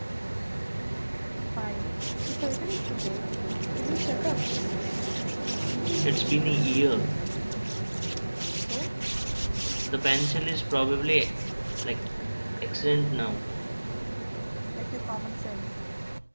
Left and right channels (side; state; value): both; inverted; correlation -1.00